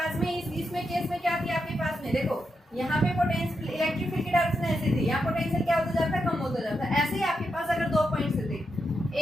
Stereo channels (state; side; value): normal; both; correlation 0.85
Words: में इसमें केस में क्या थी, आपके पास में देखो यहाँ पे पोटेंशियल इलेक्ट्रिक फील्ड की डायरेक्शन ऐसी थी, यहाँ पोटेंशियल क्या होता जाता है, कम होता जाता है। ऐसे ही आपके पास अगर 2 पॉइंट्स थे